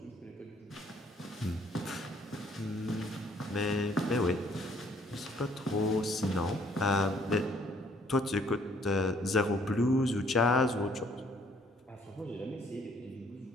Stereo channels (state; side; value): normal; both; correlation 0.63